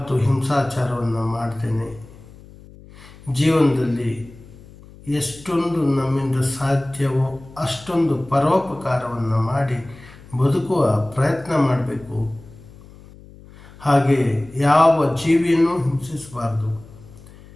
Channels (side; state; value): left; noise; hum, 21 dB below the sound